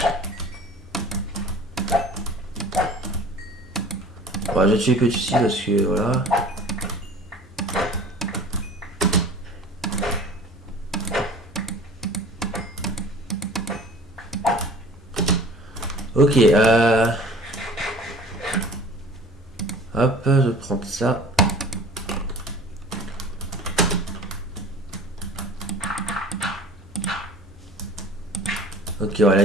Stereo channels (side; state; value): both; normal; correlation 0.45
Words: Bon, je vais tuer que ici parce que, voilà. Ok, hop, je vais prendre ça. Ok, ouais, la